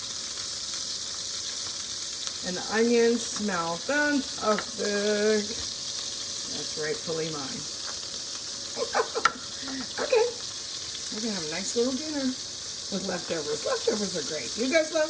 And the onions smell fantastic. That's rightfully mine. Okay. We're going to have a nice little dinner with leftovers. Leftovers are great. You guys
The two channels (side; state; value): both; identical; correlation 1.00